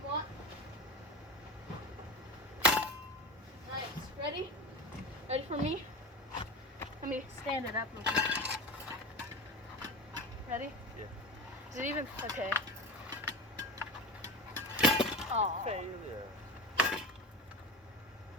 want. Nice. Ready? Ready for me? Let me stand it up real quick. Ready? Yeah. Is it even? Okay. Oh. Failure.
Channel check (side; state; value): both; normal; correlation 0.28